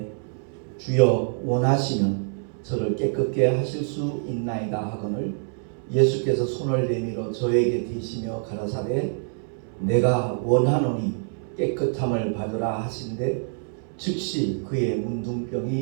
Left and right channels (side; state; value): left; silent; 61 dB below the other